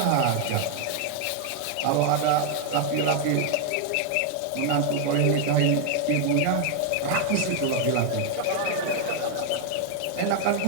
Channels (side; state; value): both; different; correlation 0.01